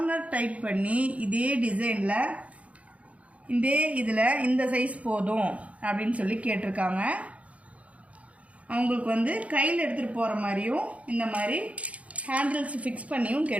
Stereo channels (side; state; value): left; late; 0.065 ms